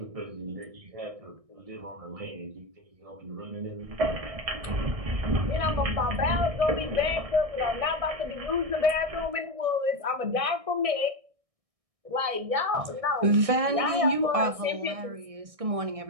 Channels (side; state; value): left; late; 1.6 ms